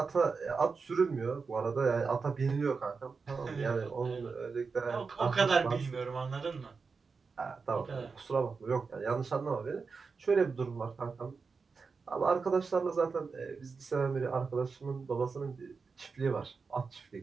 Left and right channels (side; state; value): left; quieter; 4.9 dB